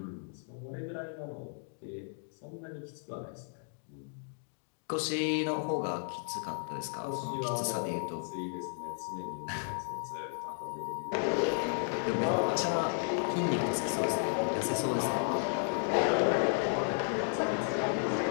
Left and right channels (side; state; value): right; silent; 55 dB below the other